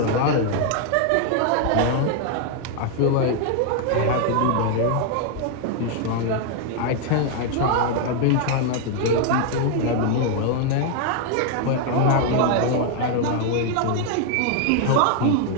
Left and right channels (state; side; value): different; both; correlation 0.00